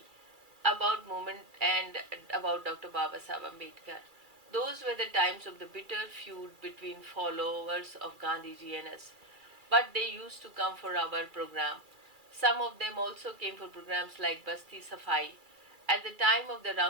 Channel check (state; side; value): late; left; 2.3 ms